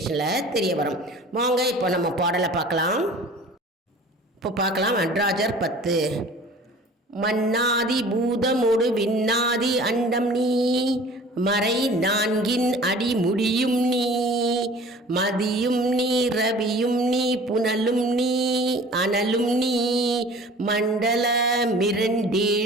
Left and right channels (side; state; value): both; normal; correlation 0.45